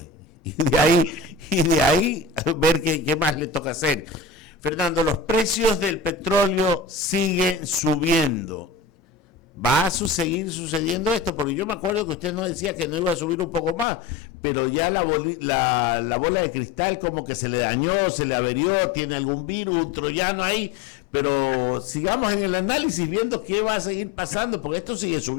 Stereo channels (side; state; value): right; drops out; at 13.9 s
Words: y de ahí ver qué más le toca hacer. Fernando, los precios del petróleo siguen subiendo. ¿Va a seguir sucediendo esto? Porque yo me acuerdo que usted nos decía que no iba a subir un poco más, pero ya la bola de cristal como que se le dañó, se le averió, tiene algún virus, un troyano ahí, pero sigamos en el análisis viendo qué va a seguir pasando, porque esto sigue